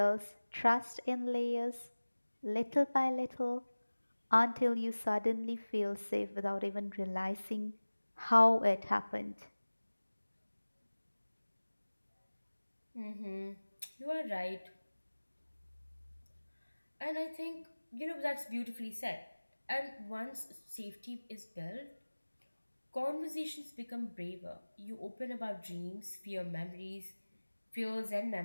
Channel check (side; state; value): both; inverted; correlation -1.00